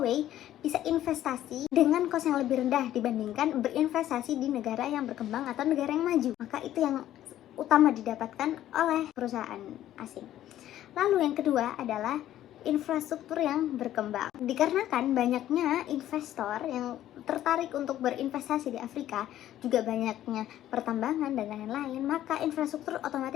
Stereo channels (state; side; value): quieter; right; 12.6 dB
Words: bisa investasi dengan kos yang lebih rendah dibandingkan berinvestasi di negara yang berkembang atau negara yang maju. Maka itu yang utama didapatkan oleh perusahaan asing. Lalu yang kedua adalah infrastruktur yang berkembang. Dikarenakan banyaknya investor yang tertarik untuk berinvestasi di Afrika, juga banyaknya pertambangan dan lain-lain, maka infrastruktur